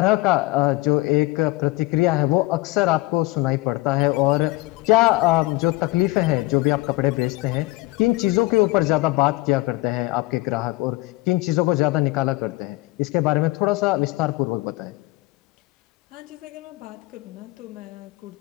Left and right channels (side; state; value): right; quieter; 20.5 dB